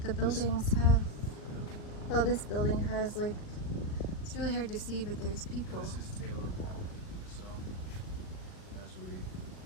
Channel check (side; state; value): right; late; 38 ms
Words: buildings have. Well, this building has like. It's really hard to see, but there's people. This is Taylor Hall. So, as we